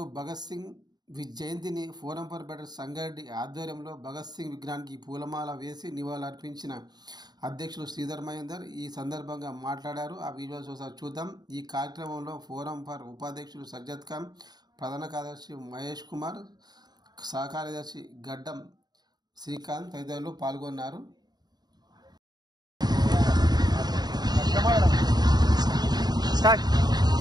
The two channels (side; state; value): left; late; 0.20 ms